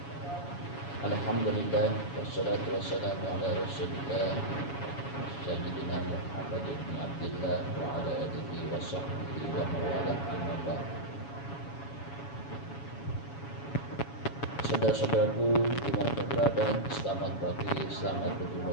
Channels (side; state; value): right; late; 7.2 ms